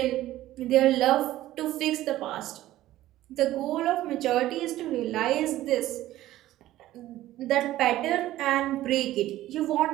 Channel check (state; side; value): quieter; left; 14.9 dB